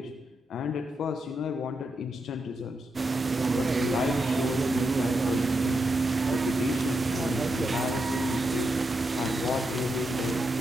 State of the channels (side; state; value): both; normal; correlation 0.84